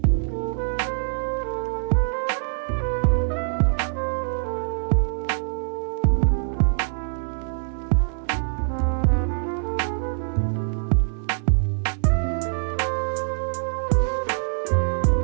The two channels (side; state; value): left; silent; digital silence